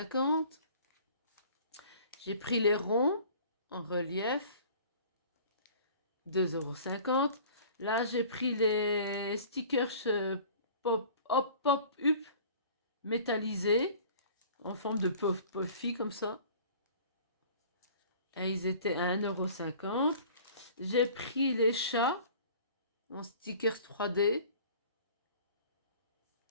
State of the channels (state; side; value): inverted; both; correlation -0.47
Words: €. J'ai pris les ronds en relief, 2,50 €. Là, j'ai pris les stickers pop-up métallisés en forme de puffy comme ça. Et ils étaient à 1,50 €. J'ai pris les chats en stickers 3D.